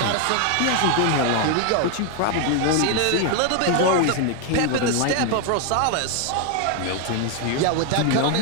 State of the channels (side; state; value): both; different; correlation 0.01